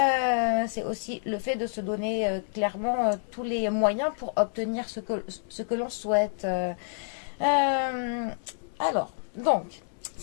C'est aussi le fait de se donner clairement tous les moyens pour obtenir ce que l'on souhaite. Euh, alors, donc,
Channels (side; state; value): right; silent; 59 dB below the other